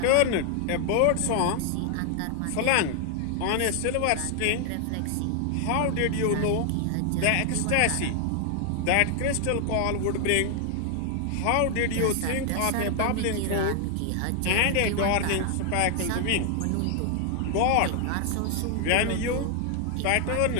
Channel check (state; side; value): different; both; correlation 0.00